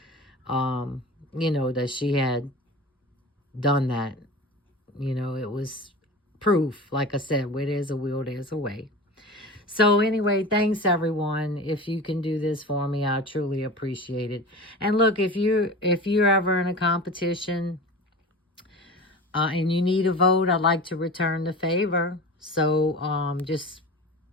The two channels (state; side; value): normal; both; correlation 0.33